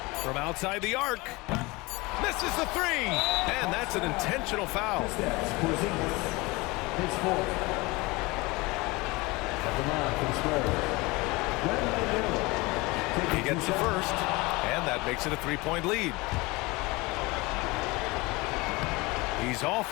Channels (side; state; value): right; quieter; 23.7 dB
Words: From outside the arc. Misses the 3. And that's an intentional foul. His 4th. At the line for the Spurs. He gets the first, and that makes it a 3-point lead. He's off